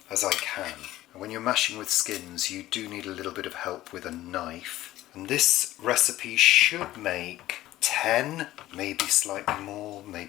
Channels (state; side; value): quieter; right; 15.4 dB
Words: as I can. And when you're mashing with skins, you do need a little bit of help with a knife. And this recipe should make 10, maybe slightly more,